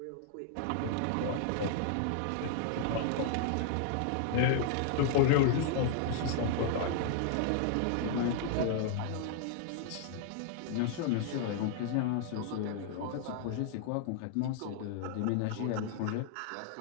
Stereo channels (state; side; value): different; both; correlation -0.01